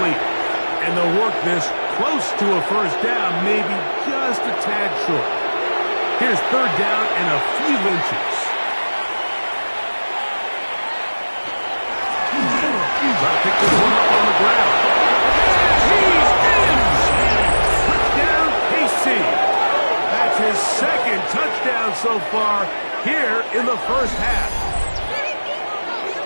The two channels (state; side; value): inverted; both; correlation -1.00